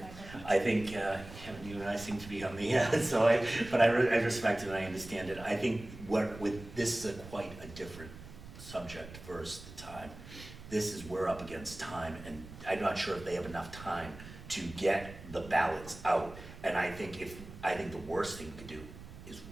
I think Kevin, you and I seem to be on the but I respect it and I understand it. I think this is quite a different subject versus the time. We're up against time, and I'm not sure if they have enough time to get the ballots out. And I think the worst thing we could do is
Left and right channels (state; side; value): noise; right; rumble, 15 dB below the sound